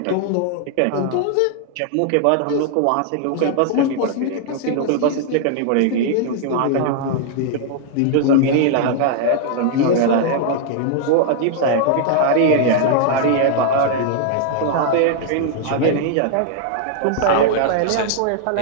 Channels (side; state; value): both; different; correlation 0.00